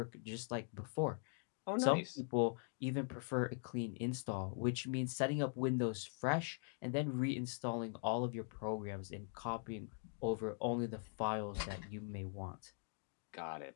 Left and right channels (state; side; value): quieter; right; 38.5 dB